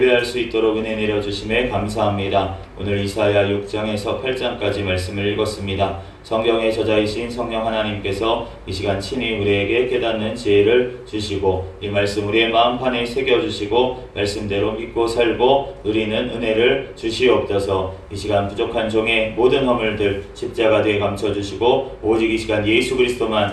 수 있도록 은혜 내려주심에 감사합니다. 오늘 이사야 6장에서 8장까지 말씀을 읽었습니다. 성경의 저자이신 성령 하나님께서 이 시간 친히 우리에게 깨닫는 지혜를 주시고 이 말씀 우리의 마음판에 새겨주시고 말씀대로 믿고 살고 누리는 은혜를 주시옵소서. 이 시간 부족한 종의 모든 허물들 십자가에 감춰주시고 오직 이 시간 예수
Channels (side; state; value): both; identical; correlation 1.00